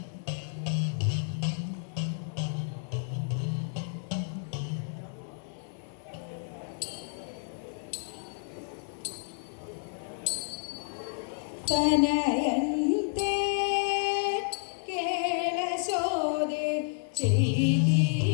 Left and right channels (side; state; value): right; silent; 57 dB below the other